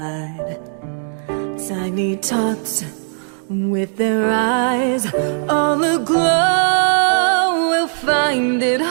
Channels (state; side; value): silent; left; digital silence